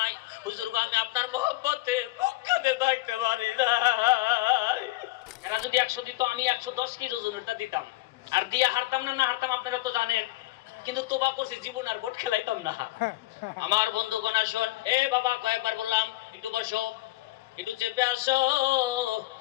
হুজুর গো, আমি আপনার মহব্বতে মক্কাতে থাকতে পারি না। এরা যদি 100 দিত, আমি 110 কেজি ওজনেরটা দিতাম, আর দিয়া হারতাম না, না হারতাম আপনারা তো জানেন। কিন্তু তোবা করছি, জীবন আর ভোট খেলাইতাম না। আমার বন্ধুগণ আসুন, এ বাবা কয়েকবার বললাম একটু বসো, একটু চেপে আসো,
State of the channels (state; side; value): quieter; right; 19.1 dB